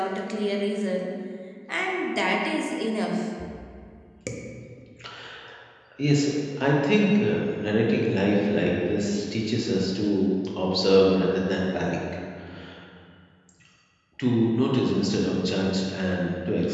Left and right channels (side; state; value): both; identical; correlation 1.00